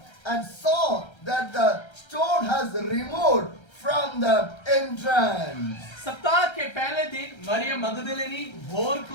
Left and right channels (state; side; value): late; right; 1.3 ms